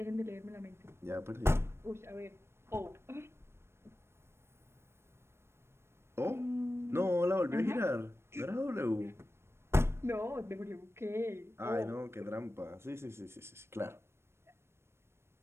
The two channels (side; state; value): left; late; 0.12 ms